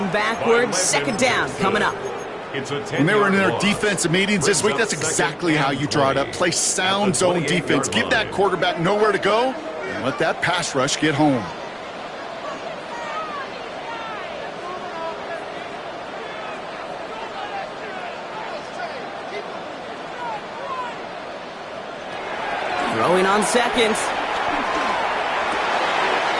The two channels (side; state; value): both; identical; correlation 1.00